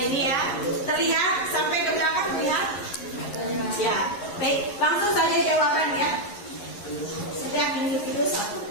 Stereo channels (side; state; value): right; late; 11 ms